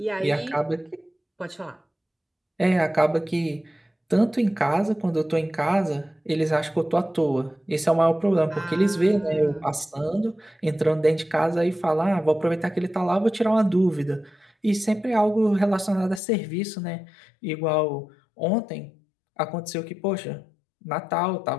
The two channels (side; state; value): right; drops out; at 16.2 s